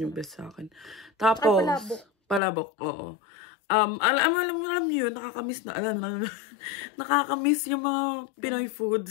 yung best sa akin. Tapos, palabok. Oo. Alam niyo, nakakamiss na. Nakakamiss yung mga Pinoy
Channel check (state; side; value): drops out; right; at 2.4 s